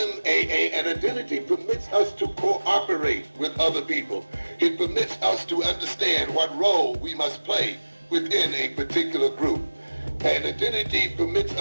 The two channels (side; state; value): both; inverted; correlation -1.00